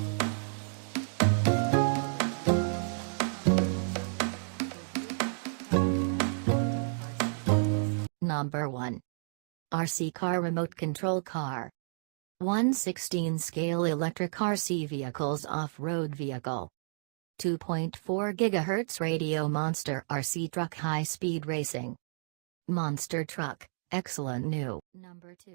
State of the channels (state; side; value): silent; left; digital silence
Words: Parks. Search for reviewparks.com for site. Review Parks present best top 10 RC trucks. Number 1. RC car remote control car. 1/16 scale electric RC vehicles off-road vehicle. 2.4 GHz radio monster RC truck high-speed racing. Monster truck, excellent new. Number